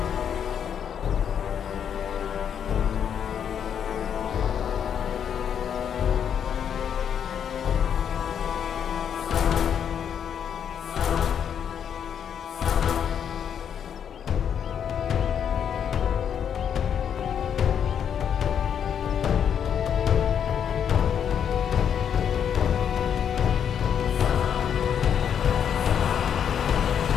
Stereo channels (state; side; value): quieter; right; 8.3 dB